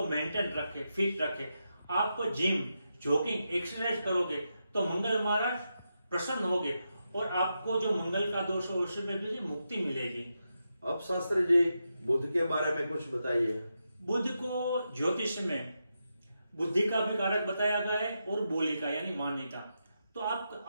मेंटेन रखें, फिट रखें। आप जिम, जॉगिंग, एक्सरसाइज करोगे तो मंगल महाराज प्रसन्न होगे और आपको जो मंगल का दोष है उसमें भी मुक्ति मिलेगी। अब शास्त्री जी, बुध के बारे में कुछ बताइए। बुध को ज्योतिष में बुद्धि का भी कारक बताया गया है और बोली का यानी वाणी का। तो आप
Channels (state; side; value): inverted; both; correlation -0.86